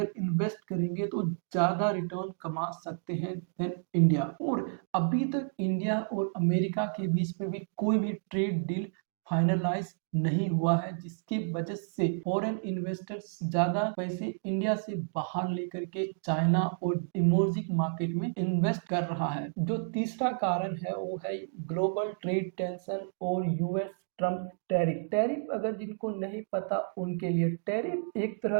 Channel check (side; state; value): left; silent; digital silence